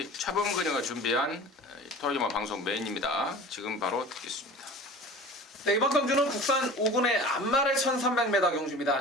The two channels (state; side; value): normal; both; correlation 0.39